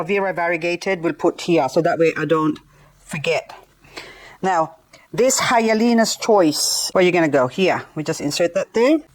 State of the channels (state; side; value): identical; both; correlation 1.00